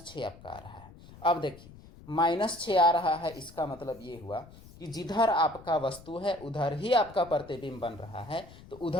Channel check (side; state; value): left; noise; rumble, 20 dB below the sound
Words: आपका आ रहा है। अब देखिए -6 आ रहा है, इसका मतलब ये हुआ कि जिधर आपका वस्तु है उधर ही आपका प्रतिबिंब बन रहा है। तो